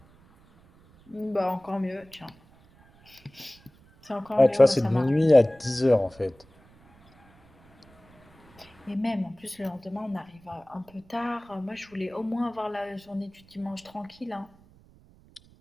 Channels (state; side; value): noise; right; rumble, 28 dB below the sound